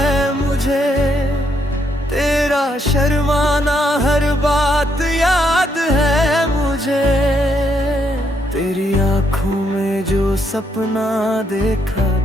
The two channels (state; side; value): normal; both; correlation 0.75